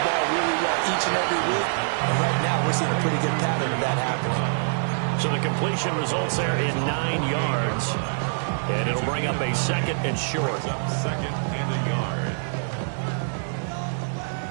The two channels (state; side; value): silent; left; digital silence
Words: ball really well each and every week, and right now we're seeing a pretty good pattern of that happening. So the completion results there in 9 yards, and it'll bring up a second and short. Second and a yard.